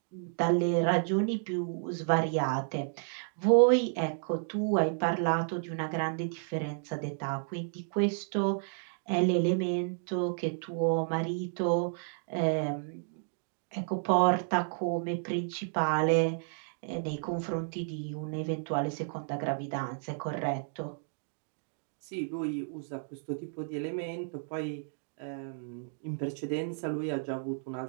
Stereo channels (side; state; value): left; silent; digital silence